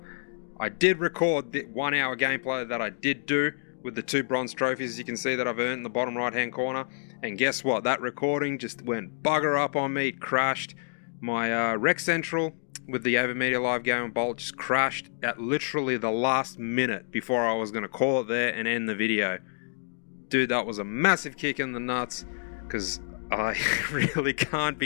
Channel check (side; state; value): right; silent; digital silence